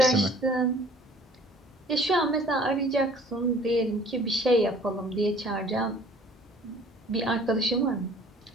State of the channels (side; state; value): both; normal; correlation 0.52